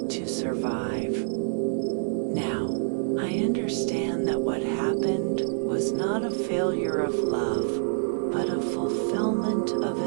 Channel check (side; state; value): left; silent; 60 dB below the other